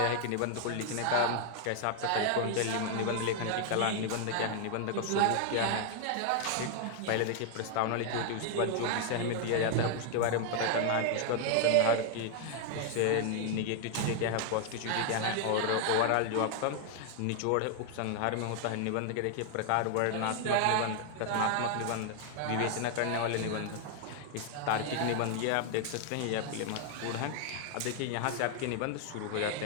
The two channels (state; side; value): different; both; correlation 0.00